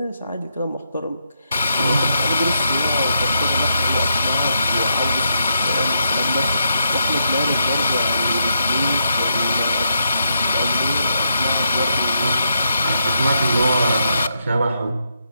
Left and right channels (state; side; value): inverted; both; correlation -0.80